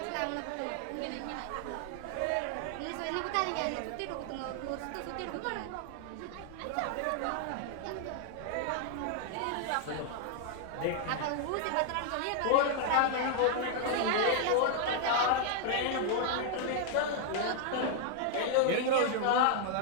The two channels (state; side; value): different; both; correlation 0.00